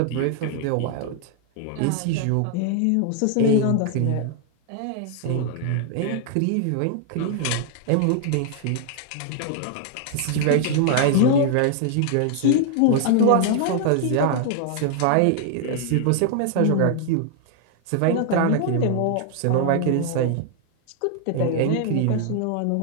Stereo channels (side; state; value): both; different; correlation 0.00